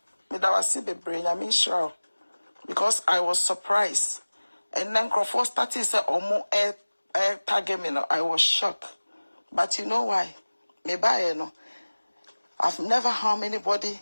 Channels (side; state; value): both; inverted; correlation -1.00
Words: Me that was see brain. I mean sure because I was surprised, and then Crawford started say omo air target me. No, I was shocked, but you know why? Me buy no. I've never harmed anybody,